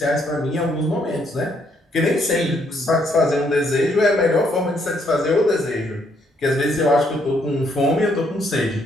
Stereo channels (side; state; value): both; normal; correlation 0.71